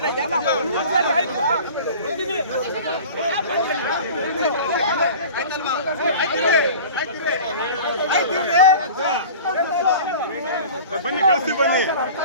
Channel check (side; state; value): both; inverted; correlation -0.39